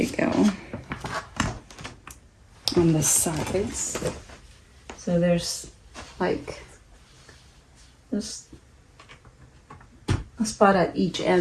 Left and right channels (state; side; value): identical; both; correlation 1.00